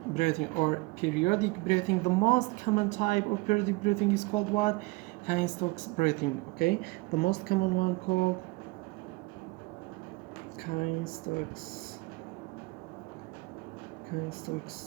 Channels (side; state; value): left; quieter; 24.1 dB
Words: breathing or periodic breathing. The most common type of periodic breathing is called what? Kine-Stokes breathing. Okay, the most common one called Kine-Stokes